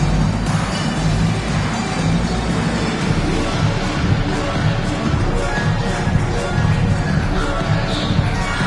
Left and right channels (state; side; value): identical; both; correlation 1.00